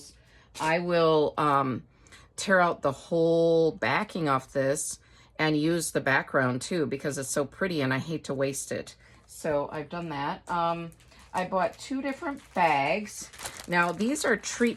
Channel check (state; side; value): identical; both; correlation 1.00